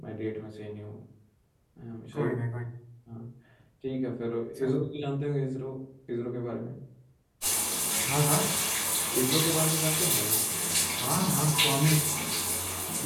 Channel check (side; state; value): both; identical; correlation 1.00